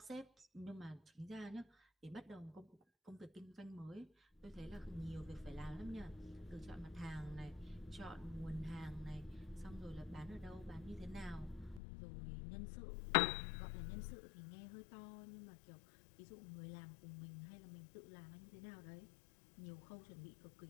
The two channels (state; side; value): drops out; right; at 11.8 s